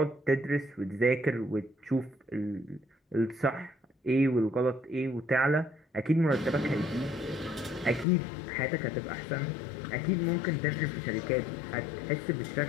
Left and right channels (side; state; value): right; drops out; at 8.1 s